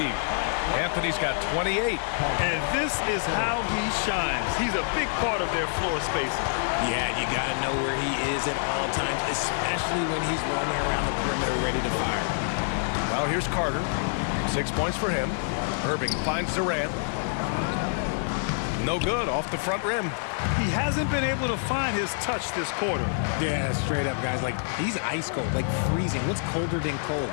Anthony's got 28. And this is how he shines. He's a big part of their floor spacing. Yeah, you got to know where he is at all times, especially when he's roaming around the perimeter ready to fire. Now here's Carter. 6 points for him. Irving finds Durant. No good, off the front rim. He hasn't been able to find his touch this quarter. Yeah, straight up, guys. Like, he's ice cold, like freezing. What's colder than cold?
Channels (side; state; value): right; silent; digital silence